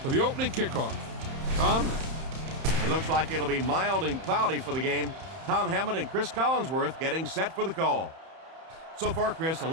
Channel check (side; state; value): left; late; 31 ms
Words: for the opening kickoff. Tom? It looks like it'll be mild and cloudy for the game. Tom Hammond and Chris Collinsworth getting set for the call. So far, Chris, a